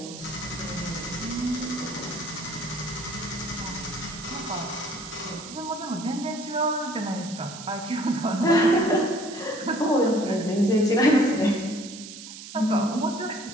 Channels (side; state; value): right; noise; hiss, 13 dB below the sound